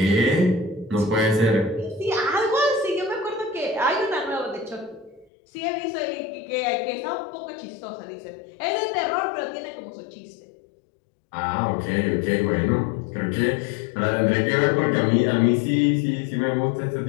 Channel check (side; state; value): right; drops out; at 5.2 s